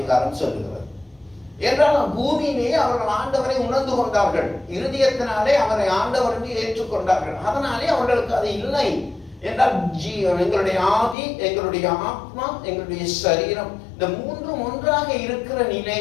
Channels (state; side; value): drops out; right; at 11.2 s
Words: சொல்லுகிறது. என்றால் பூமியிலே அவர்கள் ஆண்டவரை உணர்ந்து கொண்டார்கள், இருதயத்தினாலே அவரை ஆண்டவர் என்று ஏற்றுக்கொண்டார்கள். அதனாலே அவர்களுக்கு அது இல்லை என்றால் எங்களுடைய ஆவி, எங்களுடைய ஆத்மா, எங்களுடைய சரீரம், இந்த மூன்றும் ஒன்றாக இருக்கிற